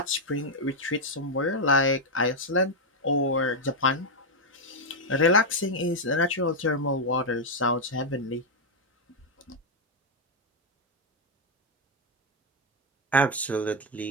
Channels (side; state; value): both; normal; correlation 0.00